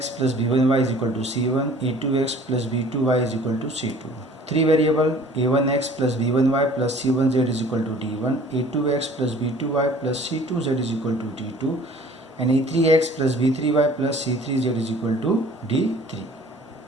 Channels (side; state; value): both; normal; correlation 0.50